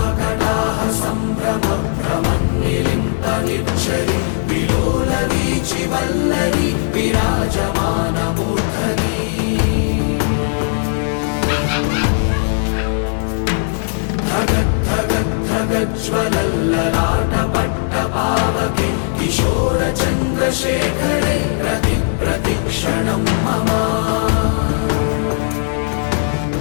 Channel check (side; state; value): right; silent; digital silence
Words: సంభ్రమ భ్రమన్నిలింప నిర్ఝరి విలోల వీచి వల్లరి విరాజమాన మూర్ధని జ్వలల్లలాటపట్టపావకే కిశోర చంద్రశేఖరే ప్రతి ప్రతిక్షణం మమ